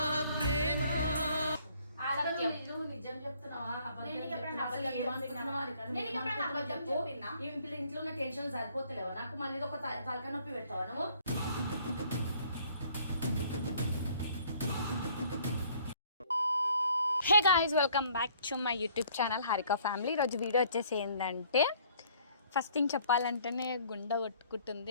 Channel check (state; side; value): inverted; both; correlation -0.59